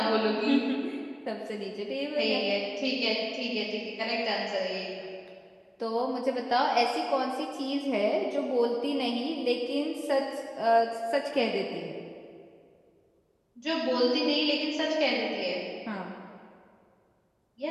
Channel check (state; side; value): identical; both; correlation 1.00